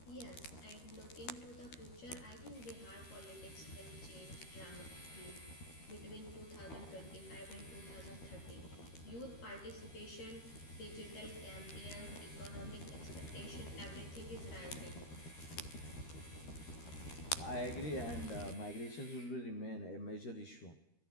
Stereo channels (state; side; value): late; right; 13 ms